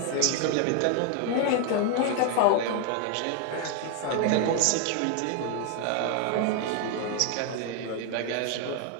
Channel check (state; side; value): different; both; correlation 0.00